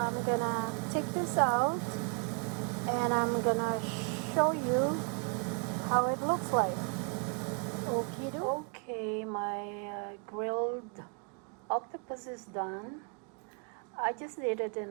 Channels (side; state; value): left; quieter; 39.0 dB